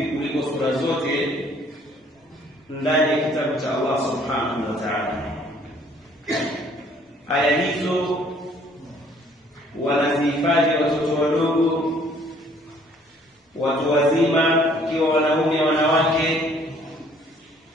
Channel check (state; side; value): normal; both; correlation 0.60